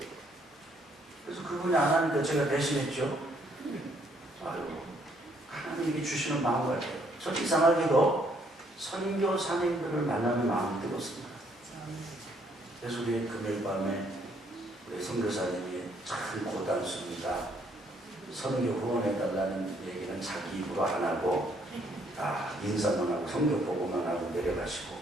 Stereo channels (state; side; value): normal; both; correlation 0.68